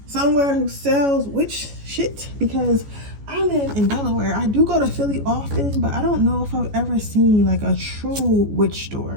Somewhere who sells witch shit, because I live in Delaware. I do go to Philly often, but I don't know if I've ever seen like a true witch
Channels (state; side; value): late; left; 14 ms